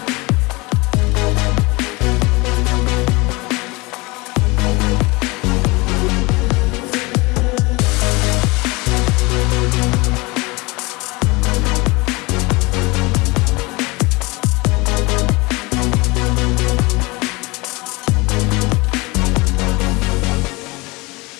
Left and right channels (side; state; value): right; quieter; 24.6 dB